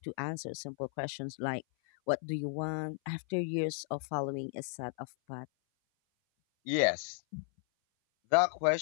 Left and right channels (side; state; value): right; silent; 55 dB below the other